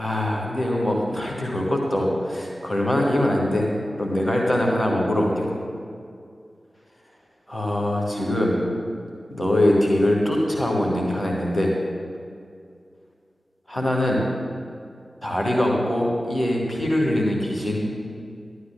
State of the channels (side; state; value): both; normal; correlation 0.93